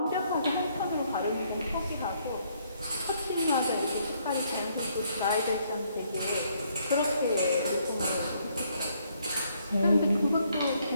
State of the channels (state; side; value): inverted; both; correlation -0.70